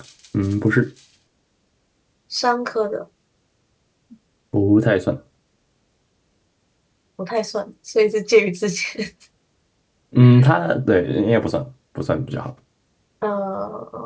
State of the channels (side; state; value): both; identical; correlation 1.00